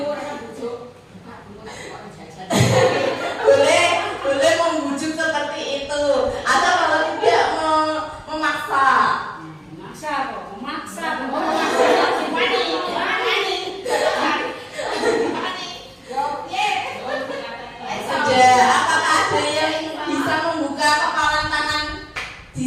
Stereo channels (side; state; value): both; identical; correlation 1.00